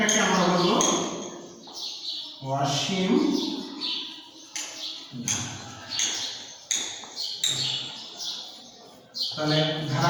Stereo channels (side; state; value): both; identical; correlation 1.00